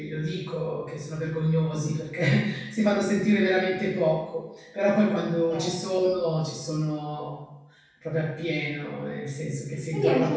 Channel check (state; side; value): identical; both; correlation 1.00